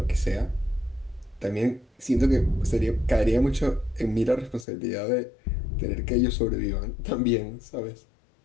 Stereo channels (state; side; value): drops out; right; at 4.7 s